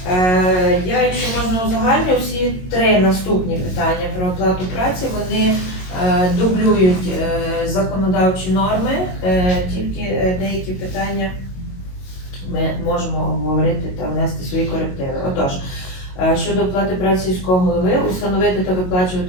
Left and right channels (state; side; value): late; right; 22 ms